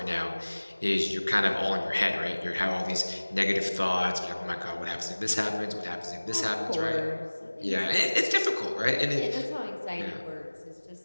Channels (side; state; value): both; inverted; correlation -1.00